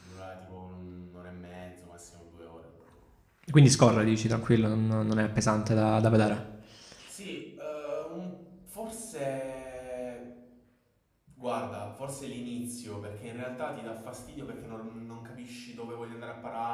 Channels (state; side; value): identical; both; correlation 1.00